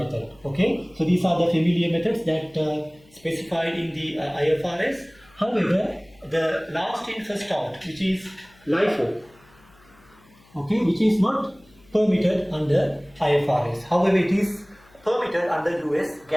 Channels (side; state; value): left; noise; hum, 29 dB below the sound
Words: Okay, so these are the familiar methods that specified in the IFRS. However, the last in first out, which is LIFO, okay, which is not permitted under IFRS. However, it is permitted under US